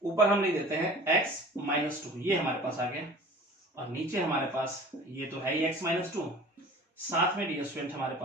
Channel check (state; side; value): normal; both; correlation 0.43